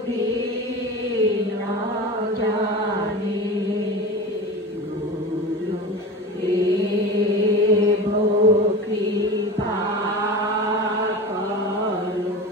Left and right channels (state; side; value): normal; both; correlation 0.30